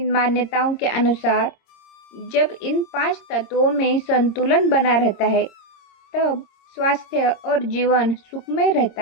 मान्यताओं के अनुसार जब इन 5 तत्वों में संतुलन बना रहता है तब स्वास्थ्य और जीवन सुखमय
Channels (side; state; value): right; late; 26 ms